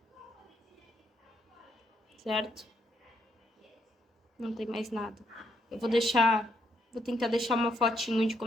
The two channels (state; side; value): normal; both; correlation 0.75